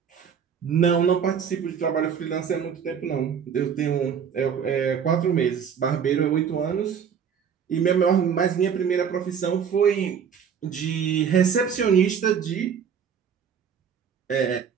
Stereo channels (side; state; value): left; quieter; 7.5 dB